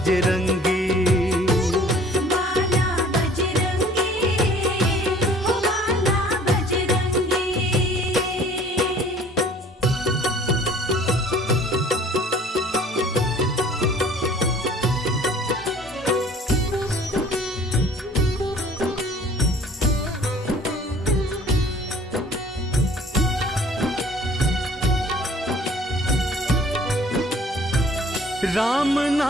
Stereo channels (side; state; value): both; normal; correlation 0.52